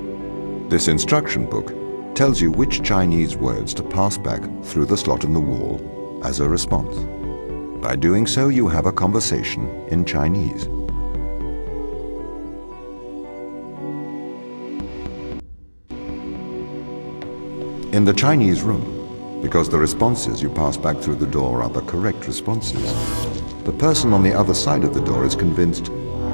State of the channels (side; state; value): both; inverted; correlation -1.00